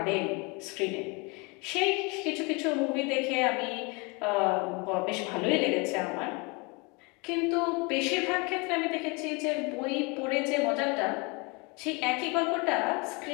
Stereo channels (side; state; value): right; quieter; 29.3 dB